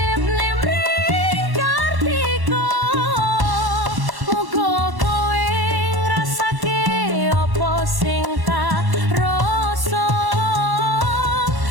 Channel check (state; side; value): late; left; 1.1 ms